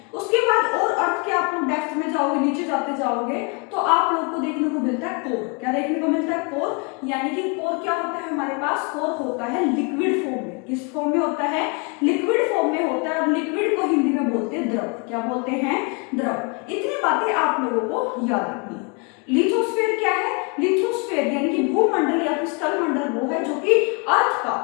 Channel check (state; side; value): quieter; right; 33.5 dB